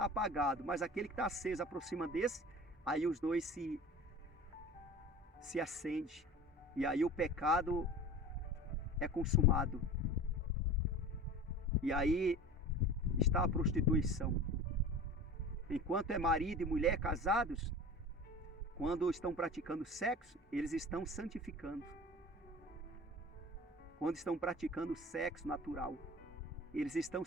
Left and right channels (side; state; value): both; normal; correlation 0.37